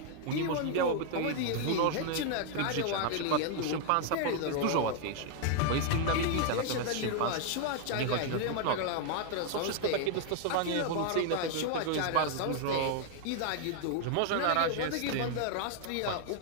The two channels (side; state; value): both; different; correlation 0.00